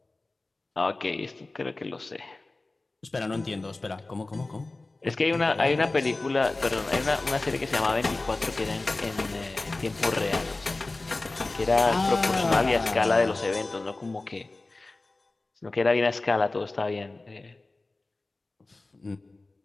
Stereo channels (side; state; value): right; quieter; 3.1 dB